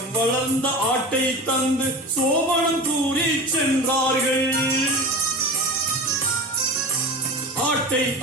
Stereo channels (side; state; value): both; normal; correlation 0.31